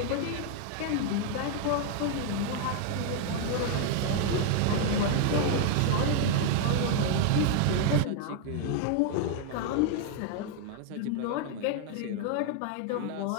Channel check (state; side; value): different; both; correlation 0.00